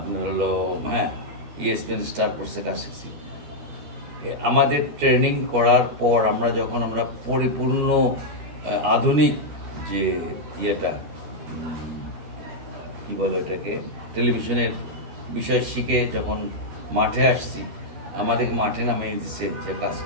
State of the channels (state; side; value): late; left; 13 ms